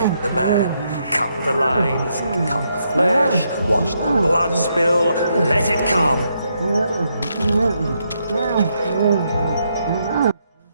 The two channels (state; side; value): inverted; both; correlation -0.78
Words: the man, cut the lines, cut the flesh, watch the blood spill, let it come.